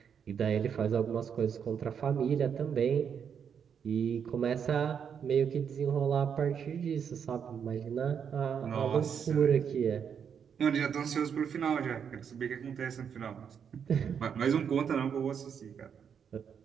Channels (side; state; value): left; quieter; 7.5 dB